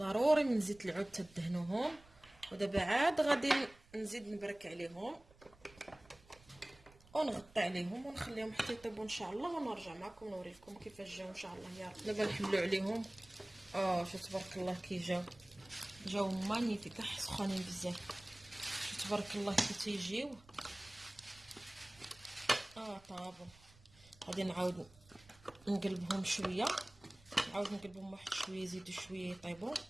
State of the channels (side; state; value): right; noise; rumble, 25 dB below the sound